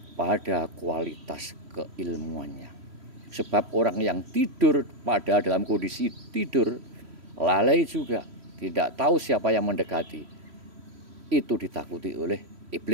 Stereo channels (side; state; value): left; late; 3.1 ms